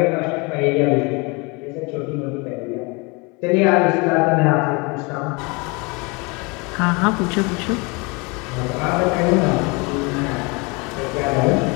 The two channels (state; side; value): quieter; right; 28.7 dB